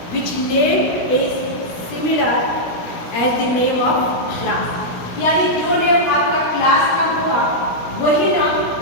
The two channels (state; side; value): late; right; 17 ms